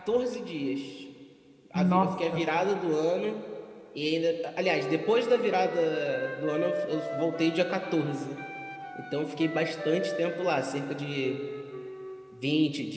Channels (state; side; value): identical; both; correlation 1.00